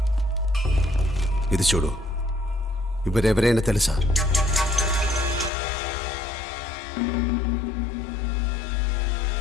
ఇది చూడు, ఇవరెవరైనా తెలుసా?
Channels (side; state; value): right; drops out; at 5.5 s